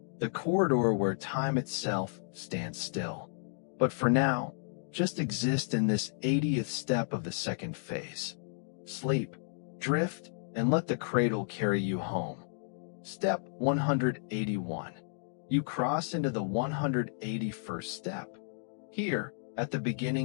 the corridor where time itself stands still. But for now, just exist in this 80th step of the second phase. Sleep, drift, and let the cradle carry you home. Step 181. You cross into the 181st step. Here, at the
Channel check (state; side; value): silent; right; digital silence